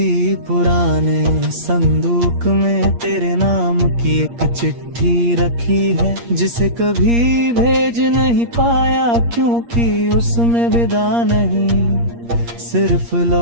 पुराने संदूक में तेरे नाम की एक चिट्ठी रखी है, जिसे कभी भेज नहीं पाया क्योंकि उसमें विदा नहीं, सिर्फ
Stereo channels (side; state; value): left; late; 8.5 ms